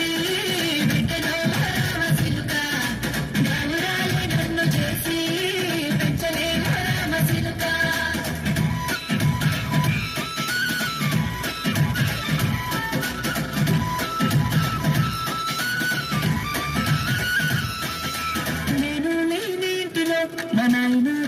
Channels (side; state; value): both; identical; correlation 1.00